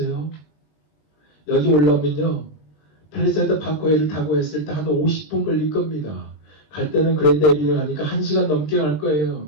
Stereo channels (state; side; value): late; right; 19 ms